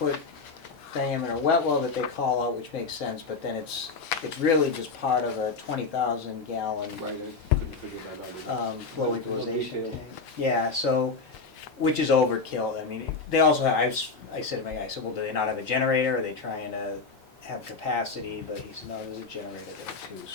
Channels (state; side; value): quieter; right; 4.3 dB